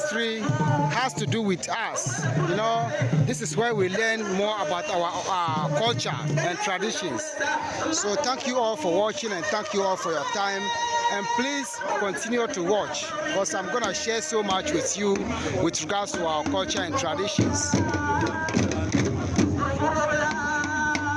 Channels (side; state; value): both; identical; correlation 1.00